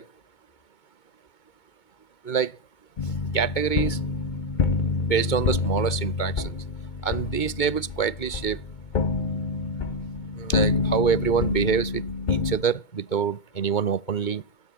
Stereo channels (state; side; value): late; right; 2.2 ms